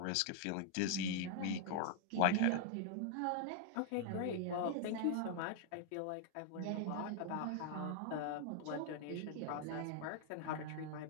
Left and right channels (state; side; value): different; both; correlation -0.01